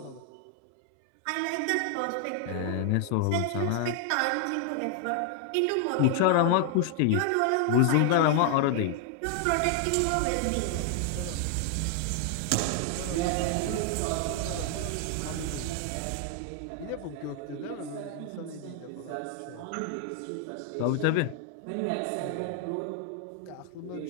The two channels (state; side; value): different; both; correlation 0.00